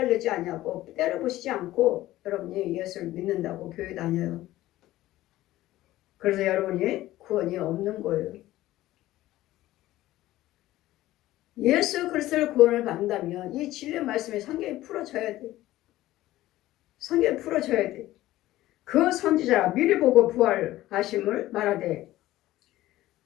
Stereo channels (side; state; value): right; quieter; 15.8 dB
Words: 아니하고 때려부시지 않고 여러분이 예수를 믿는다고 교회 다녀요. 그래서 여러분이 구원이 없는 거예요. 예수 그리스도를 구원을 받는다면 이 진리 말씀에 성경이 풀어져야 돼. 성경이 풀어져야 돼. 그 선지자가 미리 보고 부활하심을 말하되